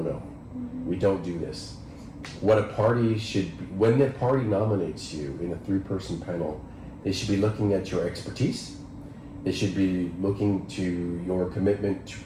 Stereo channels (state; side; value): identical; both; correlation 1.00